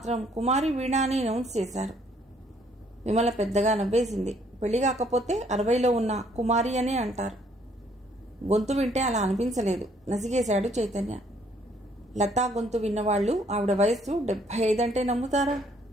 కుమారి వీణ అని అనౌన్స్ చేశారు. విమల పెద్దగా నవ్వేసింది. పెళ్లి కాకపోతే 60లో ఉన్న కుమారి అనే అంటారు. గొంతు వింటే అలా అనిపించలేదు. నసిగేశాడు చైతన్య. లతా గొంతు విన్నవాళ్లు ఆవిడ వయస్సు 75 అంటే నమ్ముతారా?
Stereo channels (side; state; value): both; normal; correlation 0.65